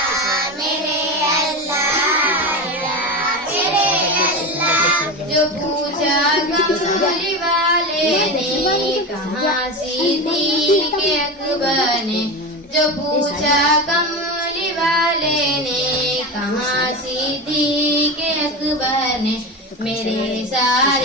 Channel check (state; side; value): normal; both; correlation 0.22